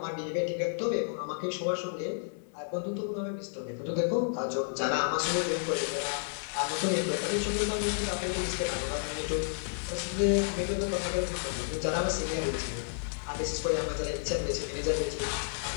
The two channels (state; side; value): silent; right; 57 dB below the other